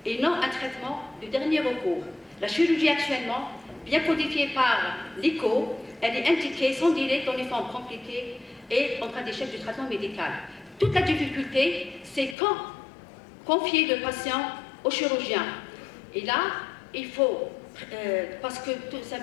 et non un traitement de dernier recours. La chirurgie actuellement, bien codifiée par l'ICO, elle est indiquée sans délai dans les formes compliquées et en cas d'échec du traitement médical. Toute la difficulté, c'est quand confier le patient au chirurgien. Et là, il faut, parce que tout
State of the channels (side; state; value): right; drops out; at 12.4 s